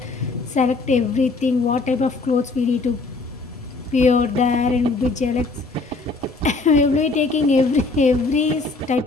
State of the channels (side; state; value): right; quieter; 3.6 dB